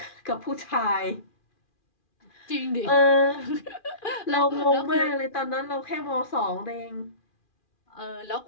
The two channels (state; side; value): late; right; 2.4 ms